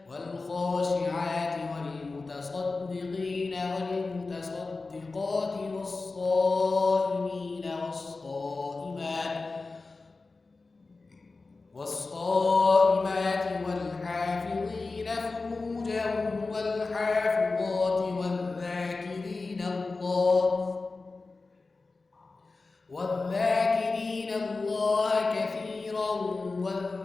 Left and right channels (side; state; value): right; quieter; 3.8 dB